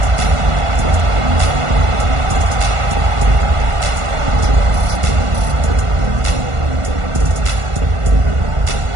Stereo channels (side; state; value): left; late; 1.5 ms